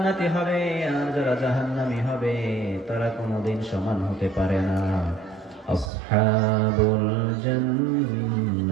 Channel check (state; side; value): drops out; left; at 5.9 s